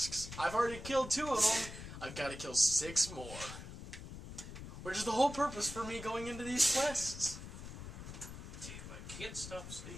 I've already killed 2 of them. I've got to kill 6 more. Which is the whole purpose for me going into these quests. Damn, I can't stop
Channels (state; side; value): noise; left; rumble, 11 dB below the sound